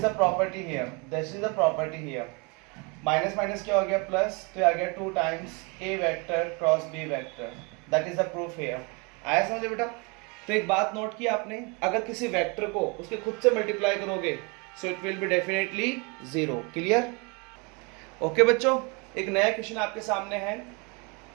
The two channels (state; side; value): quieter; left; 30.8 dB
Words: the property here. Minus minus क्या हो गया? प्लस, तो आ गया 2 times a vector cross b vector. That is the proof here. आया समझे बेटा? तो एक बात नोट की आपने, अगर किसी वेक्टर को उसके खुद से मल्टीप्लाई करोगे so it will be definitely 0। Clear? Okay बच्चों, एक नया क्वेश्चन आपके सामने है।